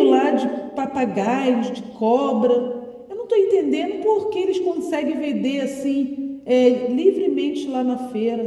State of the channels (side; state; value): both; identical; correlation 1.00